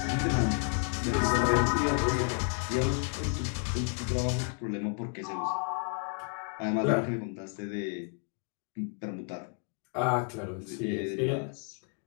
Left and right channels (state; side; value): quieter; right; 39.1 dB